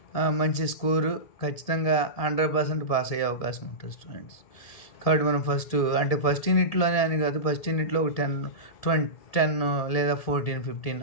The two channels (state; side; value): late; right; 1.7 ms